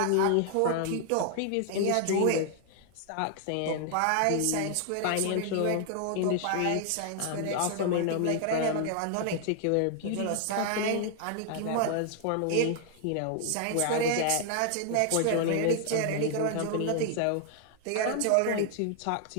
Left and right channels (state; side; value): different; both; correlation 0.00